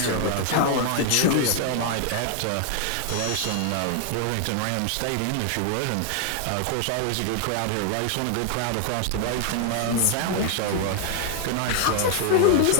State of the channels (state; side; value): different; both; correlation 0.00